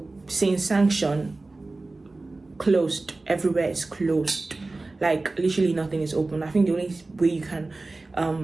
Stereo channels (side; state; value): left; quieter; 3.3 dB